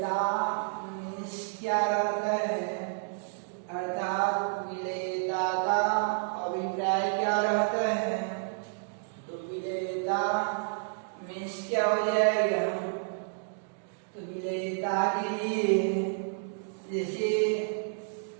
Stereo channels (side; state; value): left; silent; digital silence